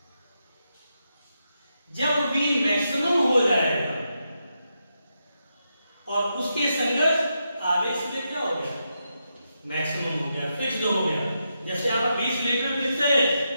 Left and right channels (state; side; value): inverted; both; correlation -0.85